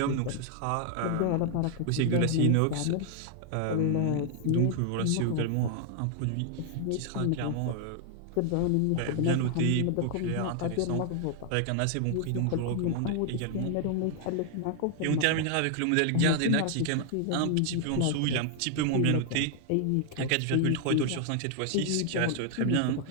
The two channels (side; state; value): both; different; correlation 0.00